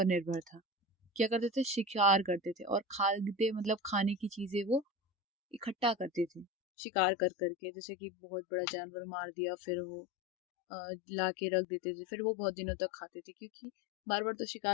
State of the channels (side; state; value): right; drops out; at 6.5 s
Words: निर्भर था। क्या करते थे, शिकार करते थे, और खाद्य मतलब खाने की चीजें वो इकट्ठा करते थे, शिकार कर करके, जैसे कि बहुत बड़ा जानवर मार दिया, फिर वो ला के रख देते थे, फिर वो बहुत दिनों तक खाते थे, क्योंकि बार बार तो